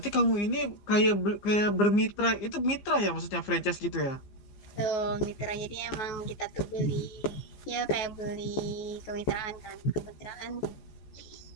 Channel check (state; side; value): late; right; 15 ms